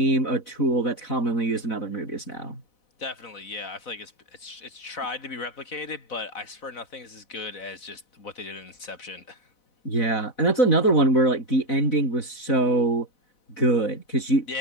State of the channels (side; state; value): right; late; 4.0 ms